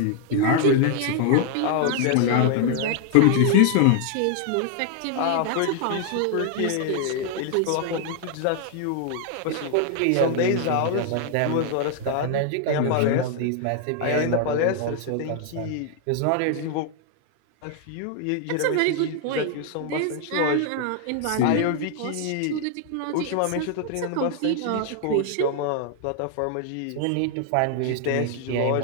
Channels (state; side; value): different; both; correlation 0.00